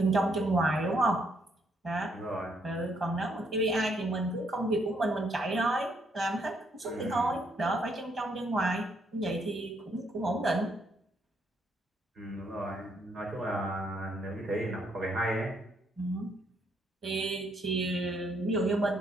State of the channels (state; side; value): normal; both; correlation 0.72